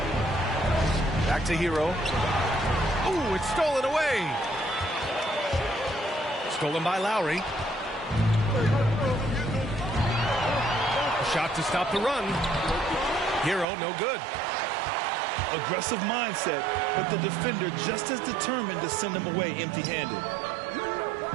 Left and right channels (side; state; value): left; drops out; at 13.7 s